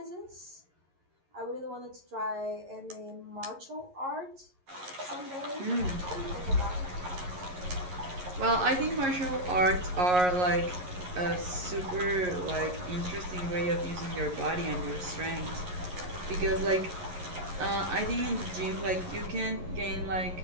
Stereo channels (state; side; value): late; left; 11 ms